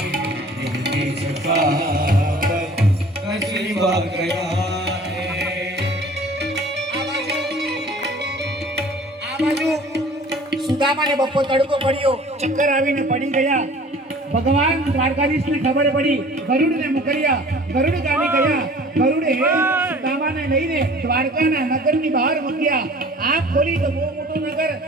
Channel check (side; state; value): both; normal; correlation 0.48